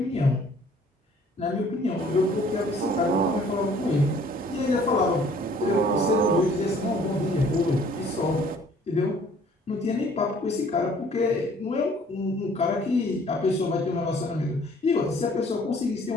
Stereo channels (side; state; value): both; normal; correlation 0.56